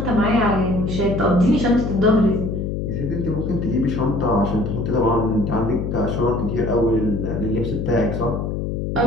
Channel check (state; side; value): noise; left; hum, 2 dB below the sound